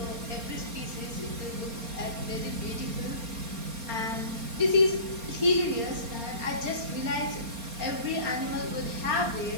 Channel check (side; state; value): left; late; 4.3 ms